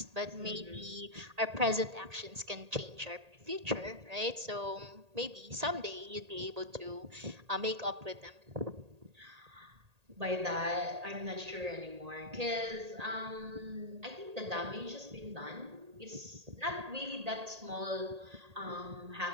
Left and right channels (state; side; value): late; left; 1.8 ms